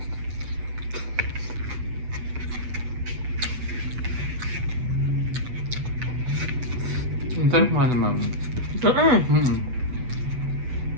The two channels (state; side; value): late; left; 8.0 ms